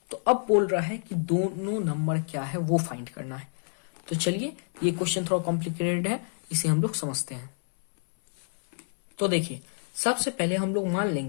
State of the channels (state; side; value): silent; right; 59 dB below the other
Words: तो अब बोल रहा है कि दोनों नंबर क्या है वो फाइंड करना है। तो चलिए ये क्वेश्चन थोड़ा कॉम्प्लिकेटेड है, इसे हम लोग समझते हैं। तो देखिए सबसे पहले हम लोग मान